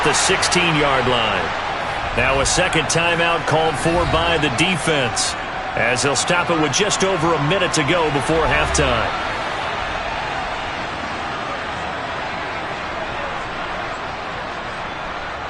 the 16-yard line. Now a second timeout called for by the defense as they'll stop it with just over a minute to go before halftime.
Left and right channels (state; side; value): identical; both; correlation 1.00